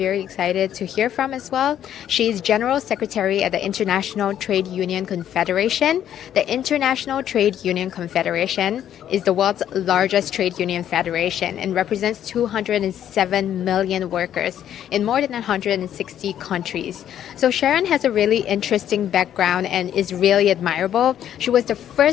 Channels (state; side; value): quieter; right; 10.5 dB